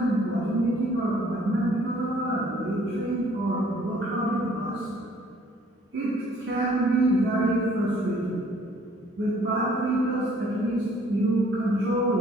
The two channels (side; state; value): both; normal; correlation 0.59